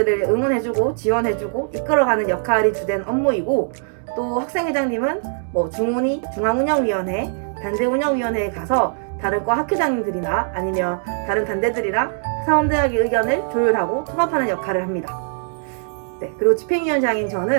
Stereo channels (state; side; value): silent; left; digital silence